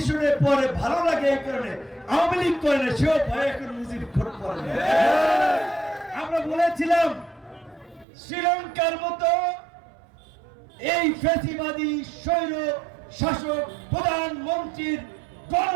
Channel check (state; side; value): drops out; left; at 8.1 s